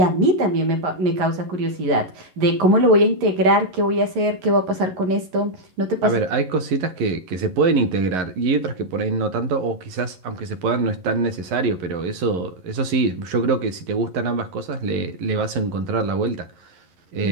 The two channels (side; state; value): left; late; 11 ms